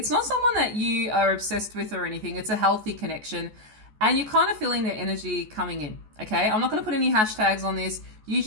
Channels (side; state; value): left; late; 14 ms